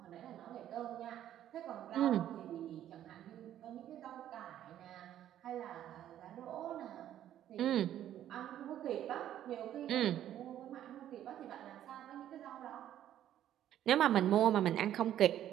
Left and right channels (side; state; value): left; quieter; 11.5 dB